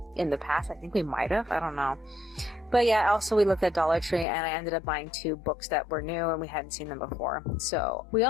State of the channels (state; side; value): drops out; right; at 4.2 s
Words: in the past. I think we might have. I don't know. But yeah, also we looked at Dollar Tree, and I ended up buying 2 books that were new and we hadn't seen them before. So we